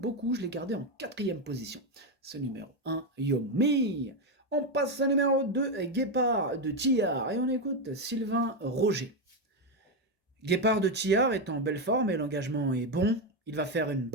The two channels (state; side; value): normal; both; correlation 0.07